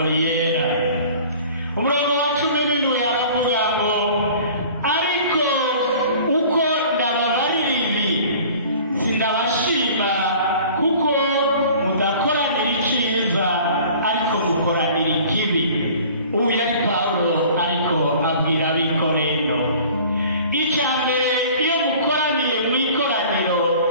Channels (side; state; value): both; inverted; correlation -0.47